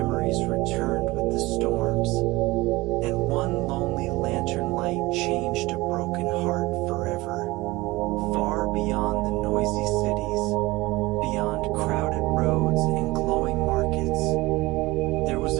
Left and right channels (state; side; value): quieter; left; 20.7 dB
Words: returned with the storms, and one lonely lantern light changed a broken heart forever. Far beyond the noisy cities, beyond crowded roads and glowing markets, there was